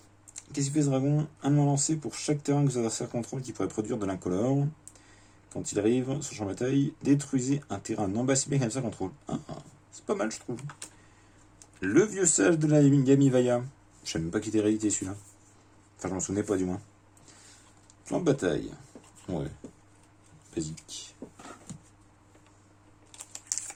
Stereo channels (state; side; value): identical; both; correlation 1.00